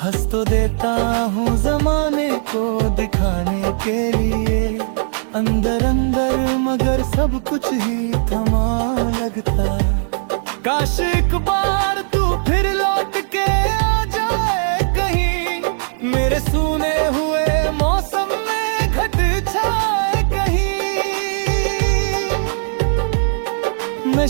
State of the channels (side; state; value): left; silent; 59 dB below the other